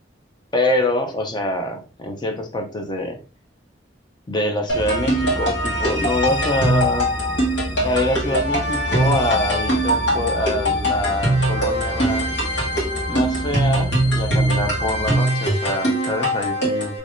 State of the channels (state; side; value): normal; both; correlation 0.35